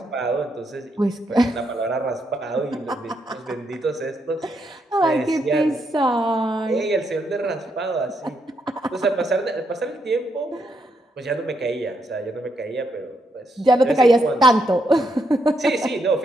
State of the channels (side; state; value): both; normal; correlation 0.78